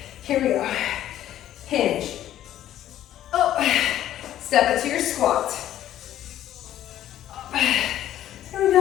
Here we go. Hinge. Up. Step it to your squat. Up. Here we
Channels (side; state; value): right; quieter; 12.2 dB